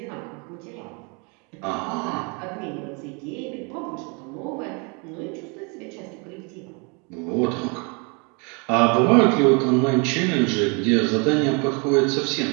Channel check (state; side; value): quieter; left; 32.7 dB